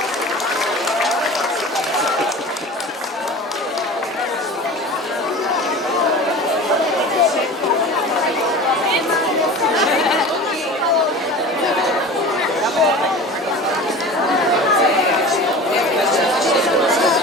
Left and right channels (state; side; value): normal; both; correlation 0.36